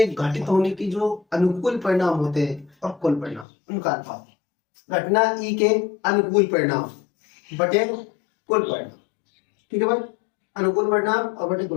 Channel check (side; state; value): right; drops out; at 3.5 s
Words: घटित होने की जो अनुकूल परिणाम होते हैं और कुल परिणाम उनका अनुपात। घटना ई के अनुकूल परिणाम बटे कुल परिणाम। ठीक है भाई, अनुकूल परिणाम और बटे